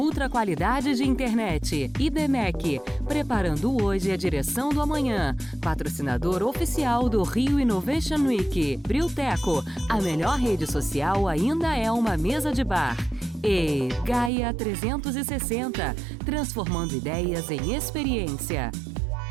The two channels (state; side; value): drops out; left; at 14.3 s